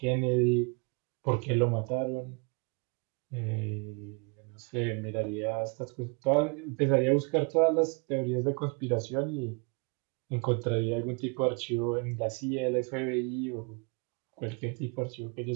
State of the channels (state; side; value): quieter; left; 34.5 dB